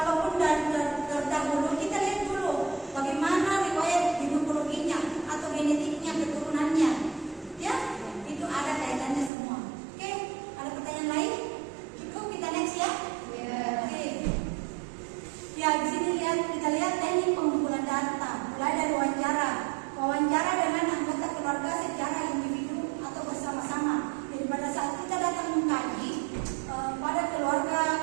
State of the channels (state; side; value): drops out; left; at 9.3 s